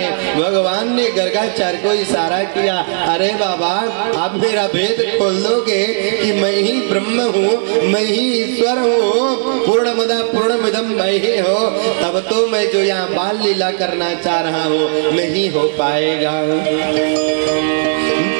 हैं। भगवान ने गर्गाचार्य को इशारा किया, अरे बाबा आप मेरा भेद खोल दोगे कि मैं ही ब्रह्म हूँ, मैं ही ईश्वर हूँ, पूर्णमदा पूर्णमिदं मयि हो, तब तो मैं जो यहाँ बाल लीला करना चाह रहा हूँ नहीं हो पाएगा।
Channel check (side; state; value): left; silent; digital silence